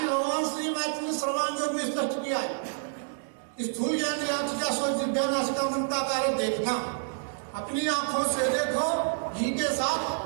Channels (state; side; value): silent; left; 59 dB below the other